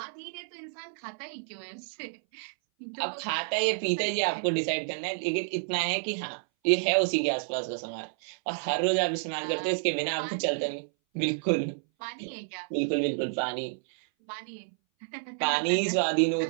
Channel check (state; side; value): silent; left; 58 dB below the other